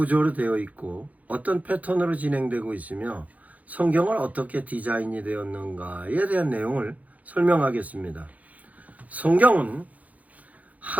되어 있고 어떤 패턴으로 진행되고 있으며 성경을 어떻게 디자인이 되었는가에 대한 내용을 설명하겠습니다. 성경은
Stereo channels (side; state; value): left; late; 0.073 ms